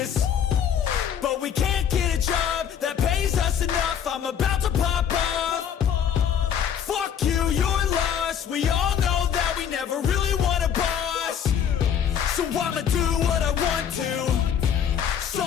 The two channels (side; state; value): right; quieter; 8.5 dB